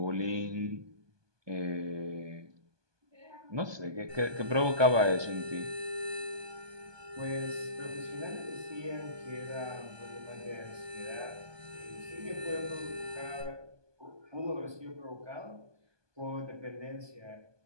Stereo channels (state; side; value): late; left; 1.2 ms